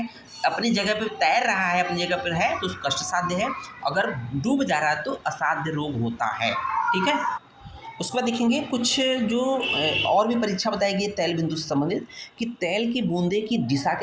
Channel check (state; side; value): identical; both; correlation 1.00